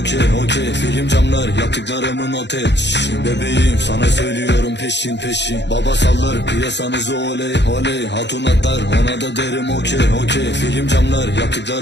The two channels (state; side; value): late; right; 0.51 ms